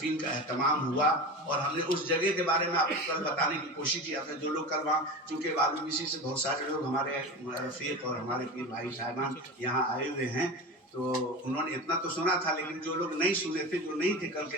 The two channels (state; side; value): normal; both; correlation 0.28